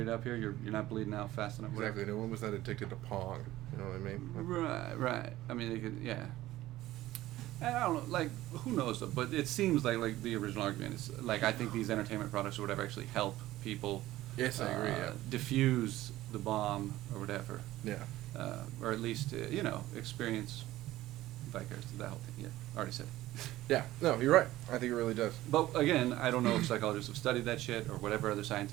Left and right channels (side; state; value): left; quieter; 15.8 dB